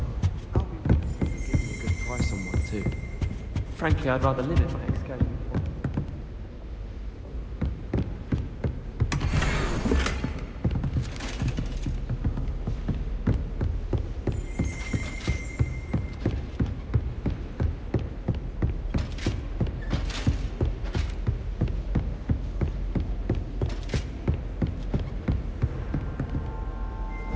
I'll be giving a good price on one too. Frankly, I'd rather live in my ex-game.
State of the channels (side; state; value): both; identical; correlation 1.00